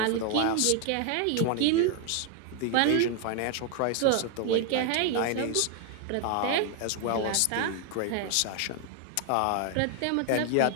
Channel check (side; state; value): both; different; correlation 0.00